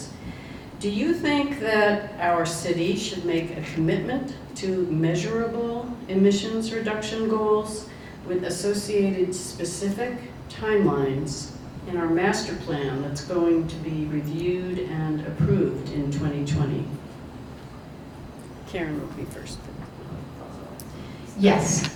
Do you think that our city should make a commitment to measurable emissions reduction goals with associated specific timelines in our master plan that's going to be reviewed and approved in 2020? Karen will be first. Yes,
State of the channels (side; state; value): both; identical; correlation 1.00